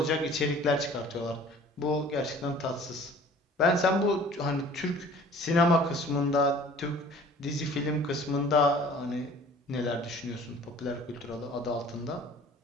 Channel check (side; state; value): both; normal; correlation 0.48